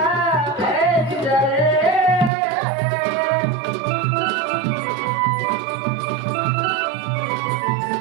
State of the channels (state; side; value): drops out; left; at 2.3 s